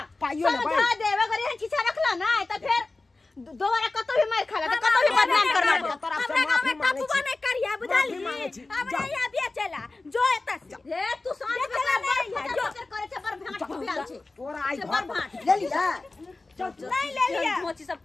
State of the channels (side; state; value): right; quieter; 3.3 dB